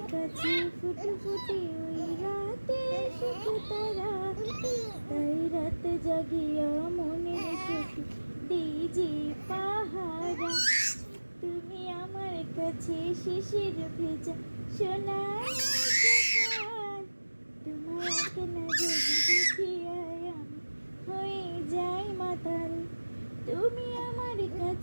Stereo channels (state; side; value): inverted; both; correlation -1.00